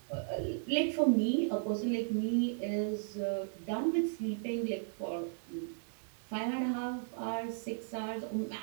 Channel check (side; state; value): left; silent; 54 dB below the other